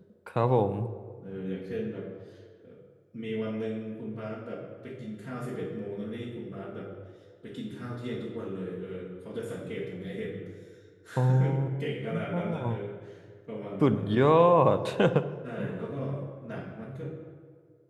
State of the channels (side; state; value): both; identical; correlation 1.00